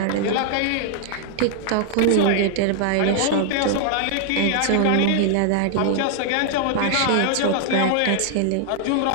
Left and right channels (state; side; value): different; both; correlation 0.00